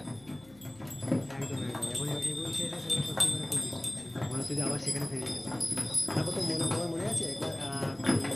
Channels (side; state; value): left; noise; hum, 25 dB below the sound